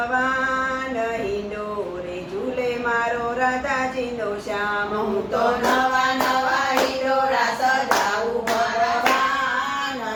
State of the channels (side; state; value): both; identical; correlation 1.00